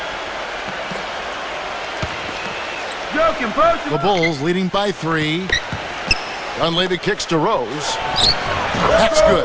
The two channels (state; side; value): identical; both; correlation 1.00